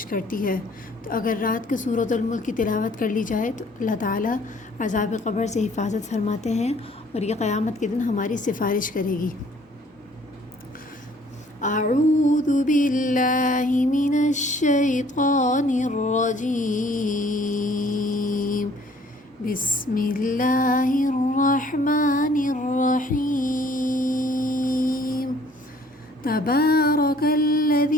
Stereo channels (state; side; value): normal; both; correlation 0.58